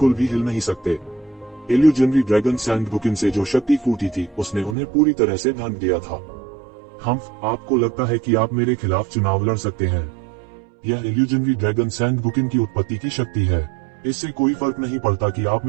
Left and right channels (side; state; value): left; drops out; at 4.8 s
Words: भी हिल नहीं सकते। इल्यूजनरी ड्रैगन सैंड गुकिन से जो शक्ति फूटी थी, उसने उन्हें पूरी तरह से ढक दिया था। आपको लगता है कि आप मेरे खिलाफ चुनाव लड़ सकते हैं? यह इल्यूजनरी ड्रैगन सैंड गुकिन की उत्पत्ति की शक्ति है। इससे कोई फर्क नहीं पड़ता कि आप